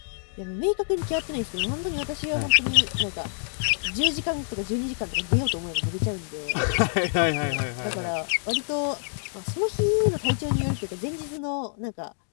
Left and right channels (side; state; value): right; silent; digital silence